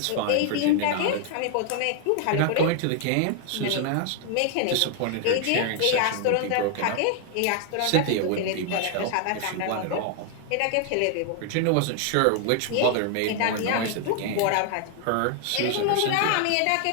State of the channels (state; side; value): different; both; correlation 0.00